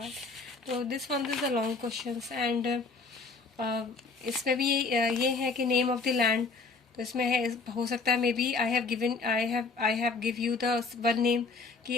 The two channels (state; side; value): quieter; right; 4.1 dB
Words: तो this one is the long question. And इसमें भी ये है कि नेम ऑफ द लैंड। तो इसमें है, हो सकता है may be I have give you the one name